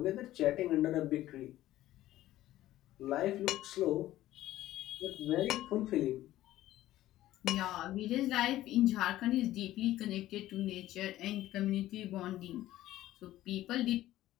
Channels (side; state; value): right; quieter; 14.7 dB